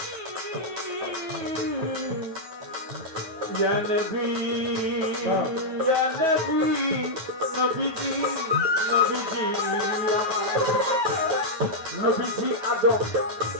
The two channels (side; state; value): left; late; 9.2 ms